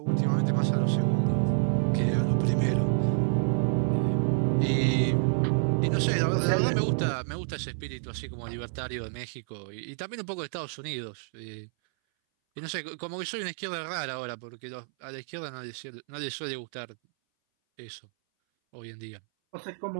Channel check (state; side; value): silent; left; 59 dB below the other